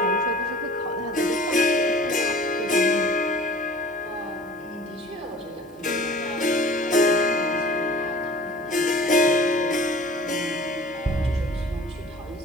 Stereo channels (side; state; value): both; normal; correlation 0.45